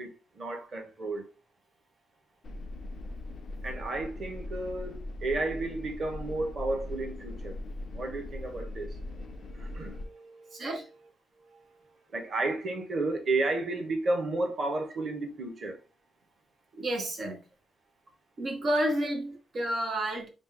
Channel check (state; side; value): normal; both; correlation 0.83